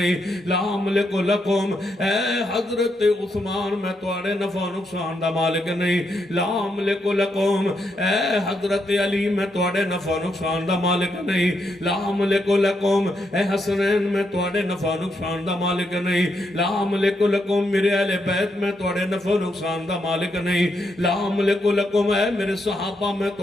لا أملك لکم۔ اے حضرت عثمان میں توڑے نفع نقصان دا مالک نہیں، لا أملك لکم۔ اے حضرت علی میں توڑے نفع نقصان دا مالک نہیں، لا أملك لکم۔ اے حسنین میں توڑے نفع نقصان دا مالک نہیں، لا أملك لکم۔ میرے اہل بیت میں توڑے نفع نقصان دا مالک نہیں، لا أملك لکم۔ اے میرے صحابہ میں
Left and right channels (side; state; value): both; normal; correlation 0.80